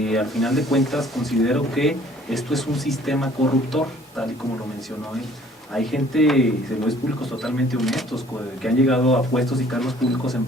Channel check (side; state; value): both; normal; correlation 0.56